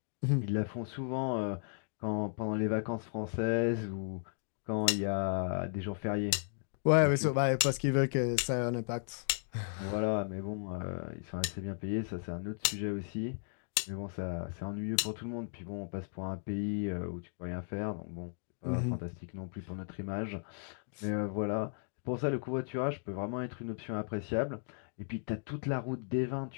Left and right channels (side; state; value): right; silent; digital silence